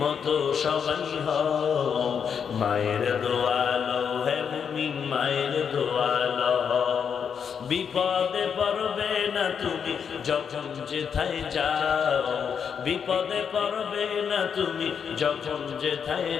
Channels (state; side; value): quieter; right; 7.1 dB